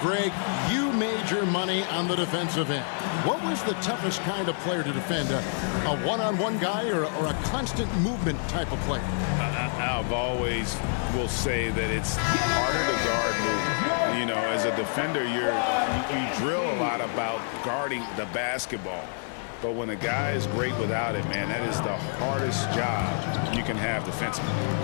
you made your money on the defensive end. What was the toughest kind of player to defend? A one-on-one guy or a constant movement type of player? I've always will say that it's harder to guard movement. You know, as a defender, you drill a lot about guarding the basketball. But when a guy is great without it, man, that is the hardest job you can have defensively.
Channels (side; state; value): right; silent; 60 dB below the other